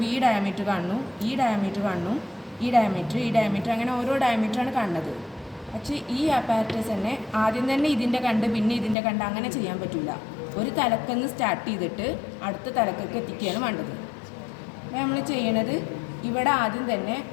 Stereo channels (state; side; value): drops out; right; at 9.0 s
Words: ഈ ഡയമീറ്റർ കാണുന്നു, ഈ ഡയമീറ്റർ കാണുന്നു, ഈ ഡയമീറ്റർ അങ്ങനെ ഓരോ ഡയമീറ്ററാണ് കാണുന്നത്. പക്ഷേ ഈ അപ്പാരറ്റസ് തന്നെ ആദ്യം തന്നെ ഇതിൻ്റെ കണ്ട് പിന്നെ ഇതിൻ്റെ കണ്ട് അങ്ങനെ ചെയ്യാൻ പറ്റില്ല. ഒരു തലക്കെന്ന് സ്റ്റാർട്ട് ചെയ്തിട്ട് അടുത്ത തലക്കൊക്കെ എത്തിക്കുകയാണ് വേണ്ടത്. അപ്പോൾ നമ്മൾ ചെയ്യണത് ഇവിടെ ആദ്യം തന്നെ